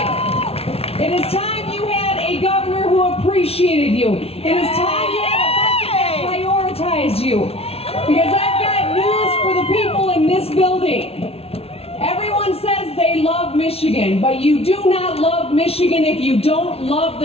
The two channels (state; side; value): late; right; 0.29 ms